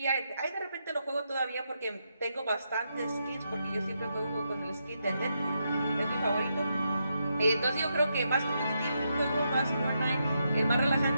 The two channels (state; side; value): inverted; both; correlation -0.82